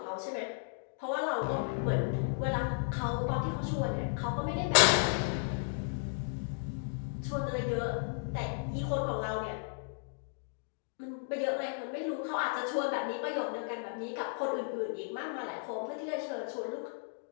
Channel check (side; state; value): right; silent; digital silence